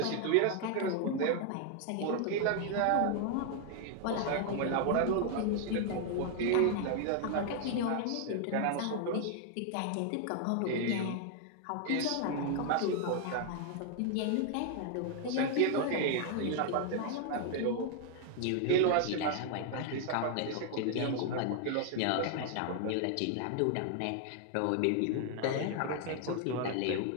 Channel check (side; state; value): both; different; correlation 0.00